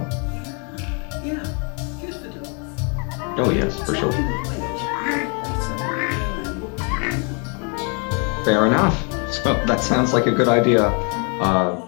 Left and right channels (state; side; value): quieter; right; 36.8 dB